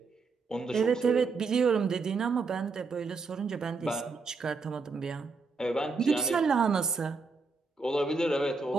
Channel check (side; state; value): left; quieter; 4.4 dB